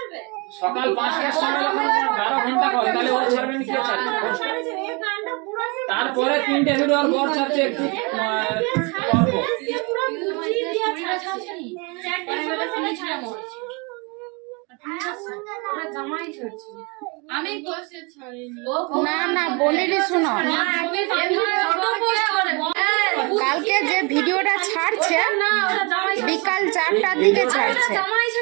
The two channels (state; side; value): quieter; left; 30.4 dB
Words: সময় যখন 12 ঘন্টা করে, তাহলে ও ছাড়বে না, কে ছাড়বে? তারপরে 3টে ভিডিও আর বর ছাড়ছে একটু অল্প। না না বলিনি, শুনো, কালকে যে ভিডিওটা ছাড়ছে বিকাল 4টার দিকে ছাড়ছে,